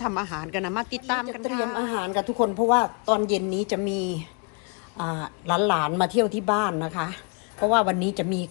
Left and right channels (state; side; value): quieter; right; 35.7 dB